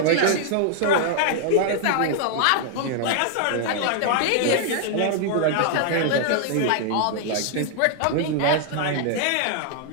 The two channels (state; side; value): different; both; correlation 0.00